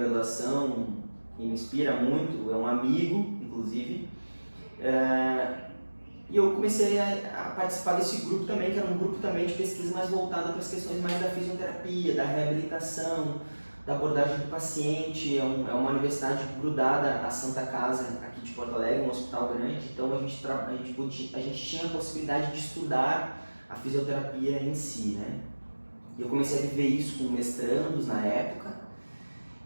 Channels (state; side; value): inverted; both; correlation -1.00